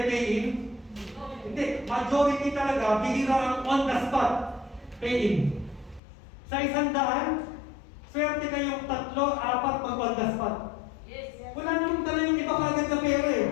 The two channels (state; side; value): drops out; right; at 6.0 s